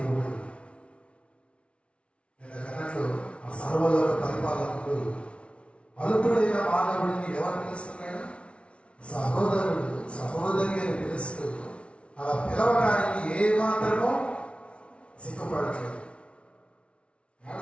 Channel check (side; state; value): right; late; 0.060 ms